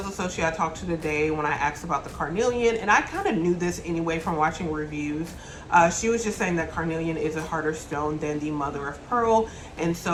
associate I talked to today, when I asked about the carnelian, and I kind of knew this anyway from watching reviews, she was just saying that carnelian is a harder stone than the mother of pearl. And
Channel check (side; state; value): both; identical; correlation 1.00